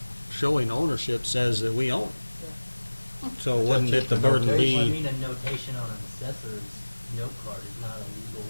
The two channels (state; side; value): inverted; both; correlation -1.00